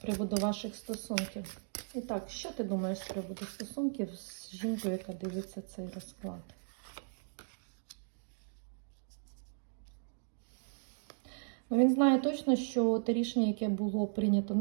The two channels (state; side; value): silent; left; digital silence